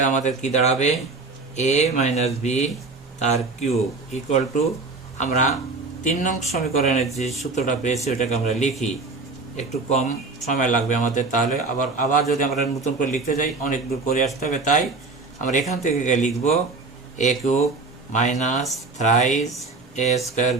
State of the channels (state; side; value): quieter; left; 3.8 dB